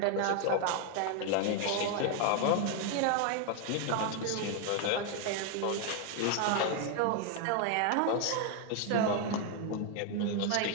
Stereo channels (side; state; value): both; different; correlation 0.01